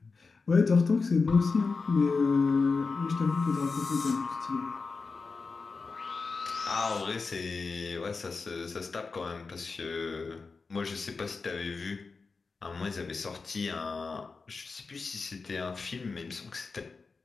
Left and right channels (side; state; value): right; quieter; 4.4 dB